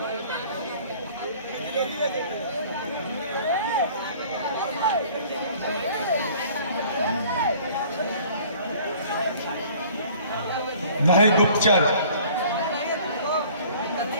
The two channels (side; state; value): both; inverted; correlation -0.51